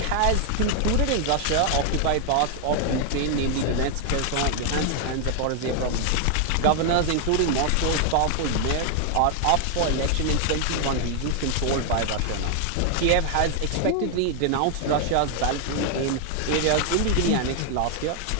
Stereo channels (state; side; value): different; both; correlation 0.00